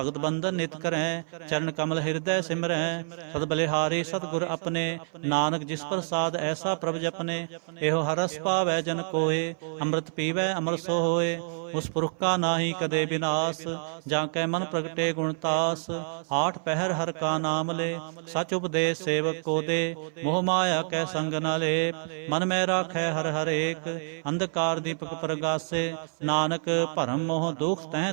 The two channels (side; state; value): left; silent; 56 dB below the other